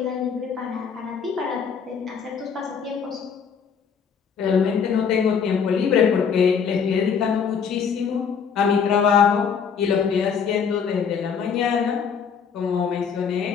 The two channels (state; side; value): quieter; right; 6.7 dB